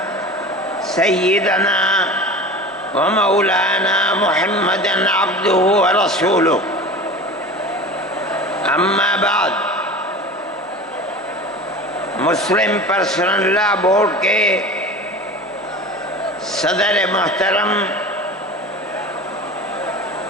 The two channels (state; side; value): normal; both; correlation 0.34